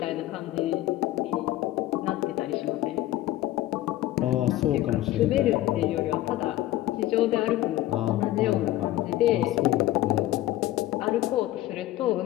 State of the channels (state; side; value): quieter; right; 15.4 dB